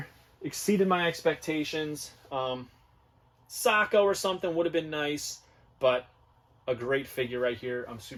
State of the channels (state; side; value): identical; both; correlation 1.00